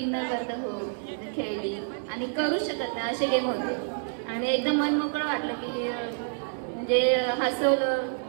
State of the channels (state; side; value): silent; left; digital silence